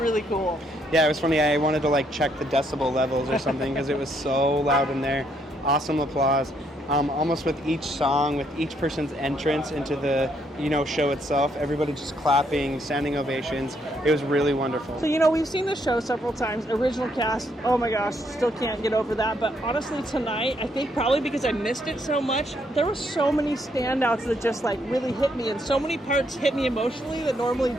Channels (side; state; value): both; normal; correlation 0.72